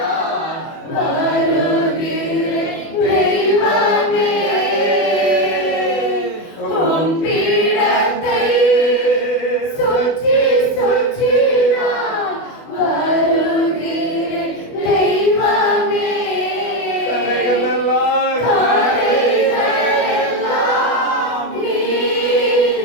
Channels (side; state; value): right; late; 24 ms